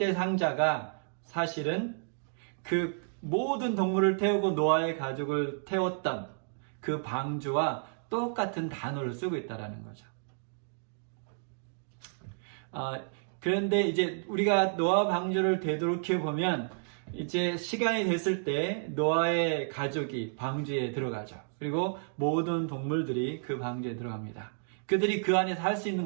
상자가 사실은 그 모든 동물을 태우고 노아의 가족을 태웠던 그 방주와 똑같은 단어를 쓰고 있다라는 거죠. 그런데 이제 우리가 노아 방주를 되돌이켜 보면 이제 시간이 됐을 때 노아의 가족이 방주에 들어가죠. 그리고 모든 동물들이 그 방주에 들어갑니다. 그들이 그 안에서 할 수 있는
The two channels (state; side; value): silent; left; digital silence